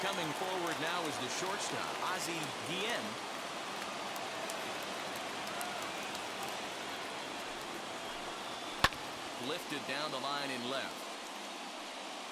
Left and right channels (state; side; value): identical; both; correlation 1.00